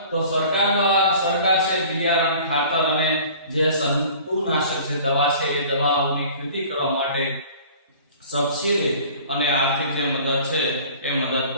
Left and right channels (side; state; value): both; inverted; correlation -0.46